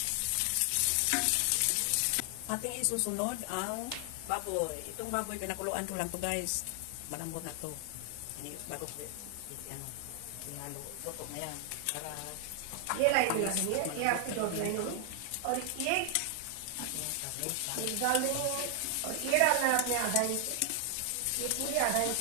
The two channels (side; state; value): both; different; correlation 0.00